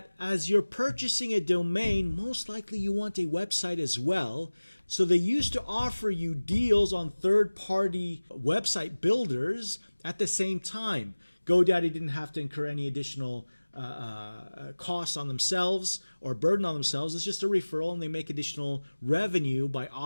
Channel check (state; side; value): inverted; both; correlation -1.00